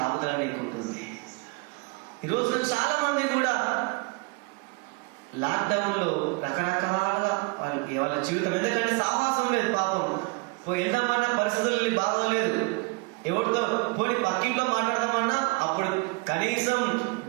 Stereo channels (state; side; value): quieter; left; 28.4 dB